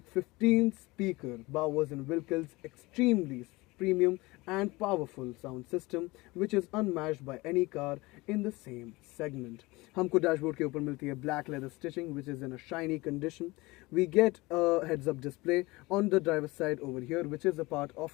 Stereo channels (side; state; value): right; quieter; 22.2 dB